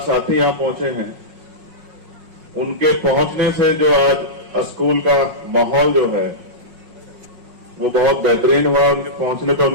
साथी यहां पहुंचे हैं, उनके पहुंचने से जो आज स्कूल का माहौल जो है वो बहुत बेहतरीन हुआ। उनके पहुंचने पर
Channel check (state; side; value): late; left; 5.5 ms